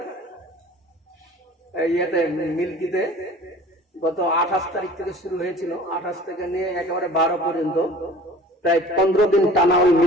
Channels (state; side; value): normal; both; correlation 0.46